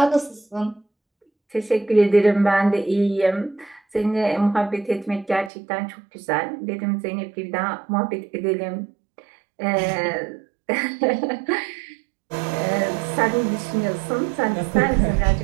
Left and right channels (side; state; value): left; drops out; at 5.5 s